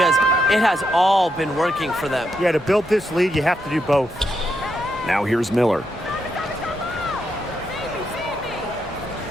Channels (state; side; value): normal; both; correlation 0.81